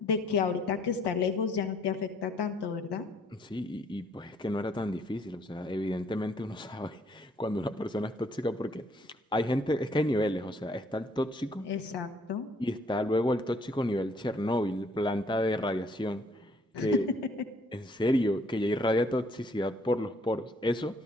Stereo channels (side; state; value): both; normal; correlation 0.64